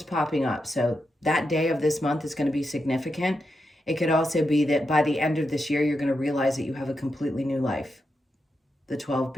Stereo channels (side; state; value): both; normal; correlation 0.86